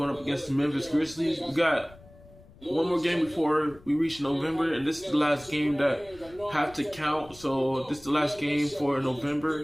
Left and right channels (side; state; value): left; noise; rumble, 23 dB below the sound